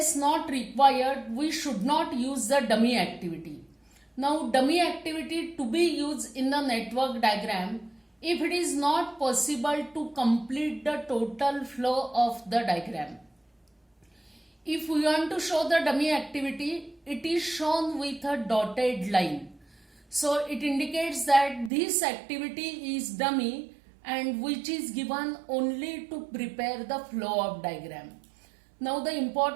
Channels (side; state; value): left; drops out; at 21.7 s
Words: not required, we should not use the dummy activity. Now dummy activity to be used in the network diagram if it is not possible to complete the total flow of the diagram. If we want to show the dummy activity, it is shown with a dotted line. So it indicates that this activity is dummy and which is given only to prepare the flow of diagram. Now the